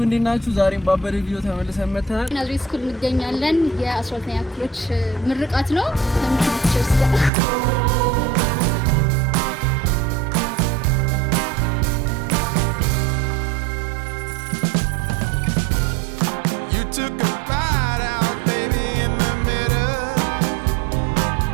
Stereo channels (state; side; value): drops out; left; at 7.3 s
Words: እንዴት ናችሁ? ዛሬም ባበደ ቪዲዮ ተመልሰን መጥተናል። ናዝሬት ስኩል እንገኛለን። የ12ኛ ክፍሎች ምርቃት ነው። ለምትችርስ ጋር